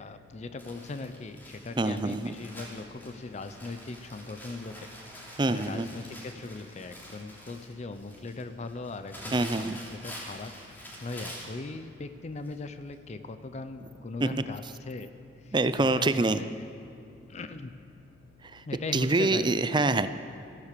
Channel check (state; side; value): noise; left; hum, 26 dB below the sound